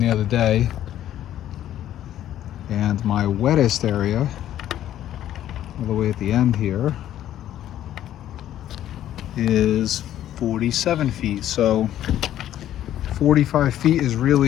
other day. And my wettest area, all the way at the end here, is 47 feet. So 45 feet is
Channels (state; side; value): quieter; right; 12.0 dB